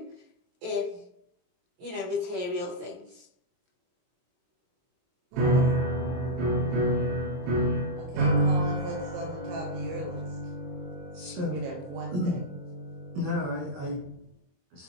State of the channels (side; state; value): left; late; 22 ms